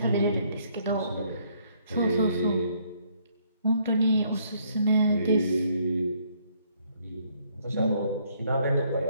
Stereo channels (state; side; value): inverted; both; correlation -0.67